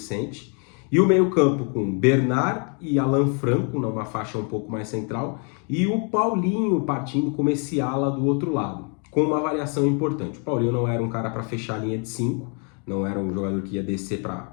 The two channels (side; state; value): right; quieter; 38.7 dB